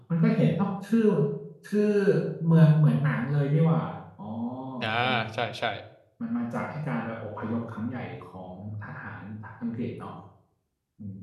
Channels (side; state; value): both; identical; correlation 1.00